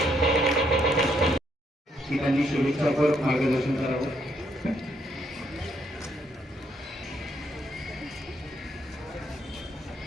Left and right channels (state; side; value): normal; both; correlation 0.73